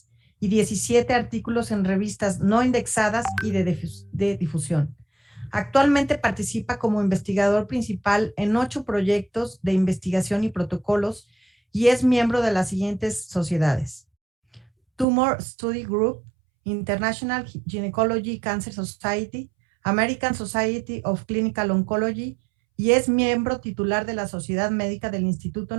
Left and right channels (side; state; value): left; drops out; at 15.1 s